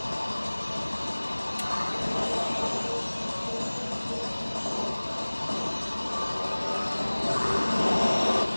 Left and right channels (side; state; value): both; inverted; correlation -1.00